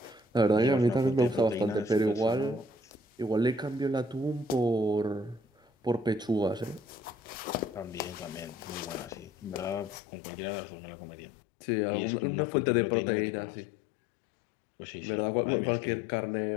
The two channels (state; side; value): drops out; right; at 10.0 s